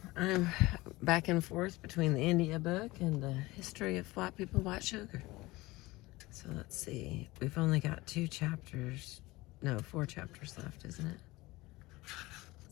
I'm back and forth between the India book and the history of white people, white sugar. So let's see, we've only got 4 chapters left, isn't it?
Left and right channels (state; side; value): quieter; right; 20.5 dB